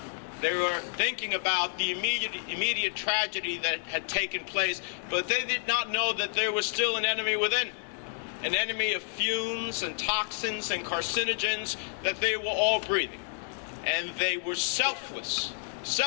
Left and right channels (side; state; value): right; silent; digital silence